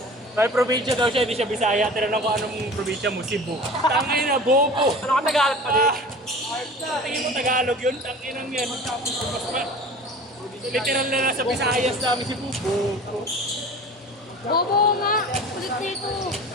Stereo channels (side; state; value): both; normal; correlation 0.40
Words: May probinsya daw siya, hindi siya Bisaya. Tinanong ko anong probinsya mo, Cebu. Tangin na, bobo. Ano ka Tagalog pa din? Tingin mo Tagalog yun, tangin ang yan. Literal na nasa Visayas namin si Bubo. Bobo nga. Kulit nito.